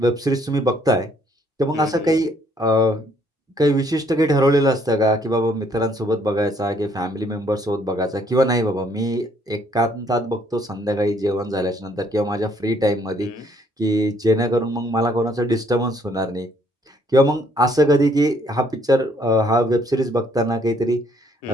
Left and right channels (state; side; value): normal; both; correlation 0.66